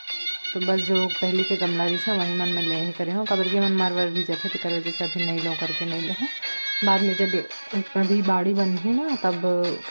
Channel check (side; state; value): both; inverted; correlation -1.00